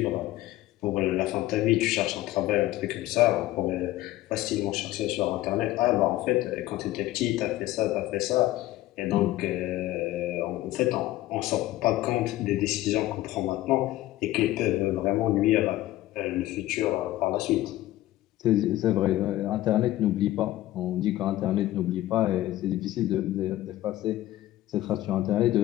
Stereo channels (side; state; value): right; quieter; 15.6 dB